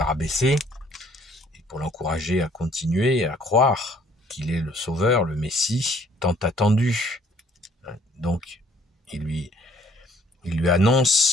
rabaisser, et pour l'encourager à continuer à croire qu'il est le Sauveur, le Messie, tant attendu. Donc, il lui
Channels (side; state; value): both; normal; correlation 0.61